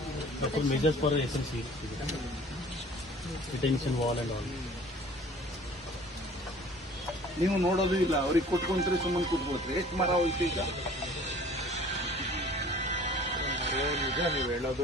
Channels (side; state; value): both; normal; correlation 0.49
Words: measures for SNC, retention wall and all. ನೀವು ನೋಡೋದು ಇಲ್ಲ, ಅವ್ರಿಗೆ ಕೊಟ್ಕೊಂಡ್ರೆ ಸುಮ್ಮನೆ ಕೂತ್ಕೋತ್ರಿ. ಎಷ್ಟು ಮರ ಹೋಯ್ತು ಈಗ? ನಿಜ ನೀವು ಹೇಳೋದು,